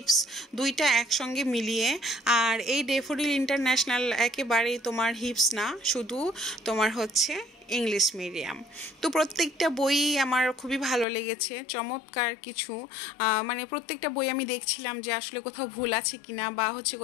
দুইটা একসঙ্গে মিলিয়ে। আর এই ডেফোডিল ইন্টারন্যাশনাল একেবারেই তোমার হিপস না, শুধু তোমার হচ্ছে ইংলিশ মিডিয়াম। তো প্রত্যেকটা বই আমার খুবই ভালো লেগেছে, চমৎকার কিছু। মানে প্রত্যেকটা বই আমি দেখছিলাম যে আসলে কোথাও ভুল আছে কিনা, বা হচ্ছে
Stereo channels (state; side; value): drops out; right; at 11.1 s